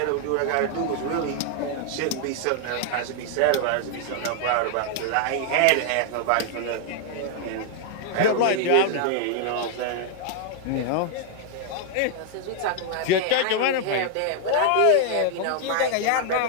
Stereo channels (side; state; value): both; different; correlation 0.00